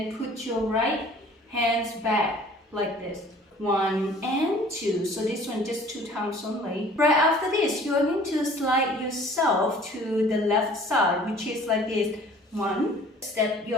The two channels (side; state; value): both; normal; correlation 0.50